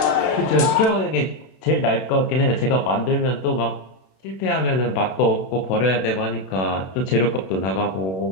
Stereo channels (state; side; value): late; right; 32 ms